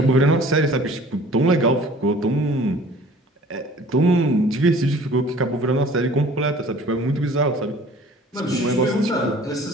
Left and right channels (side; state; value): both; normal; correlation 0.49